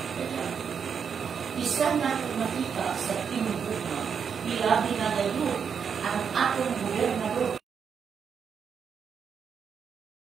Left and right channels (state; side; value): quieter; left; 6.8 dB